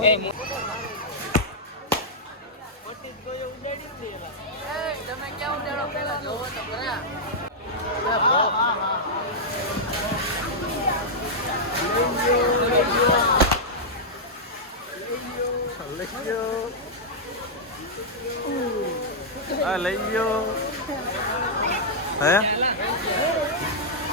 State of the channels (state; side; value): normal; both; correlation -0.07